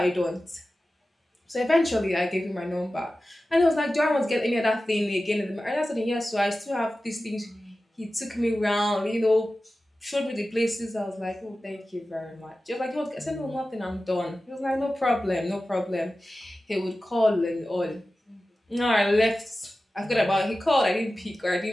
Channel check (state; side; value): normal; both; correlation 0.95